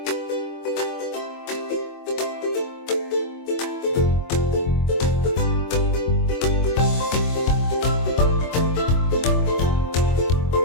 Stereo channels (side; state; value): right; late; 24 ms